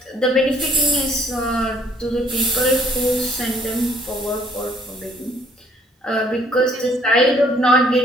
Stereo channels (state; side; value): normal; both; correlation 0.62